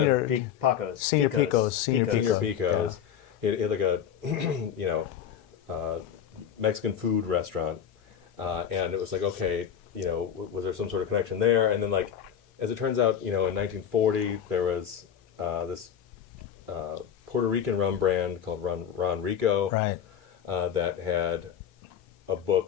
Picos. Senior Picos. He had like a Mexican food restaurant. And it was like, okay, was there some sort of connection there? And then, like, as it turns out, in 1940, there was this Puerto Rican rum brand called Ron Rico, that had a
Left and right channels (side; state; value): right; quieter; 8.7 dB